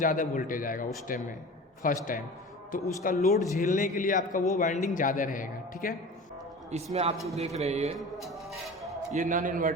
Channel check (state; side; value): normal; both; correlation 0.36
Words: वोल्टेज आएगा उस टाइम में, फर्स्ट टाइम, तो उसका लोड झेलने के लिए आपका वो वाइंडिंग ज़्यादा रहेगा। ठीक है, इसमें आप जो देख रहे हैं ये नॉन